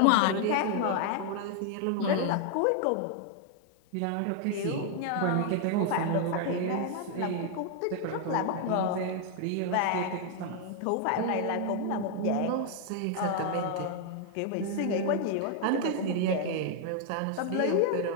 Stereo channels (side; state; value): both; different; correlation 0.00